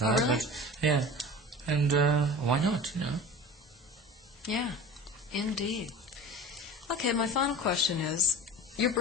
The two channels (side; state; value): both; normal; correlation 0.36